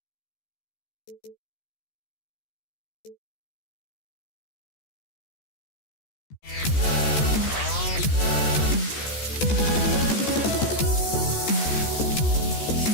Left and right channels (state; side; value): late; right; 14 ms